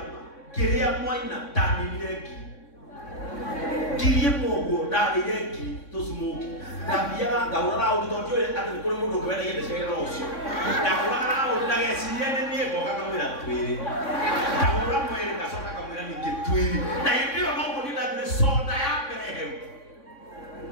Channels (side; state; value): right; late; 3.6 ms